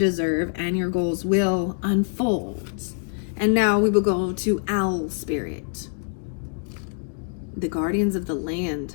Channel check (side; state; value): right; silent; 62 dB below the other